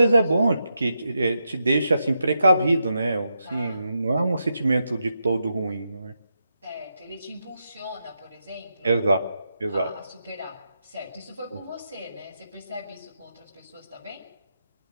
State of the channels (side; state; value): both; inverted; correlation -0.85